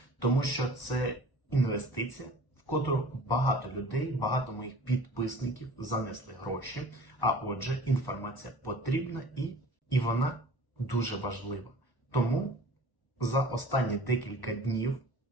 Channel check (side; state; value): right; late; 1.1 ms